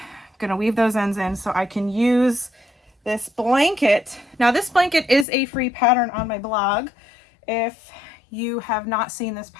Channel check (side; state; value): right; drops out; at 5.2 s